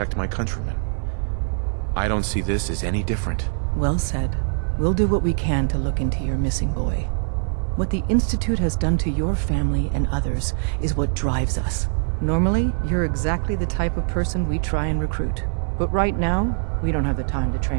my countrymen. I don't see this as any different. Well said. We'll do what we can to look into your missing boy. What the Institute has done to your family and others is what drives us. Normally, you're exactly the type of person we try and recruit. But right now, we don't have the time to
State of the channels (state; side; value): silent; left; 64 dB below the other